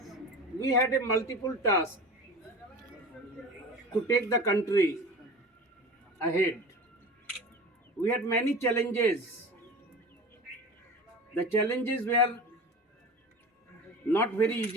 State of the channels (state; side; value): normal; both; correlation 0.34